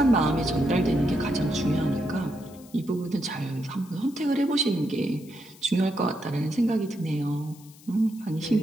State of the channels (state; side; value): noise; left; hiss, 23 dB below the sound